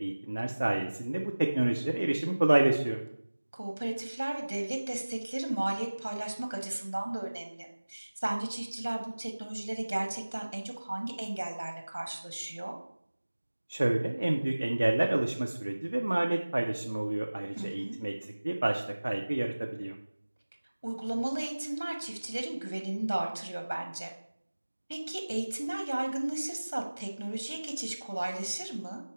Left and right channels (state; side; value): inverted; both; correlation -1.00